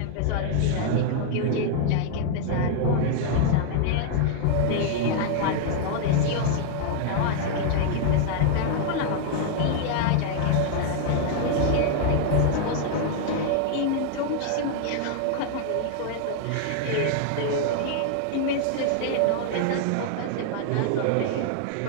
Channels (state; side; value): different; both; correlation 0.00